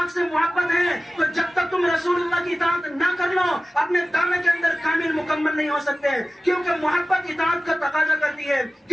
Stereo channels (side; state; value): both; normal; correlation 0.96